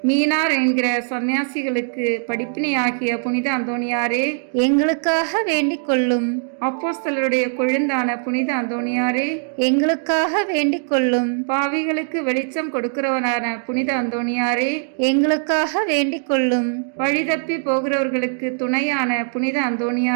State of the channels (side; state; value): left; silent; digital silence